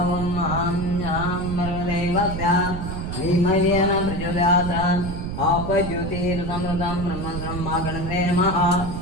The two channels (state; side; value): noise; right; rumble, 5 dB below the sound